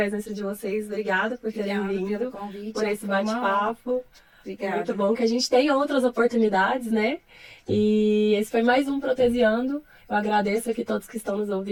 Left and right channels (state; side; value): identical; both; correlation 1.00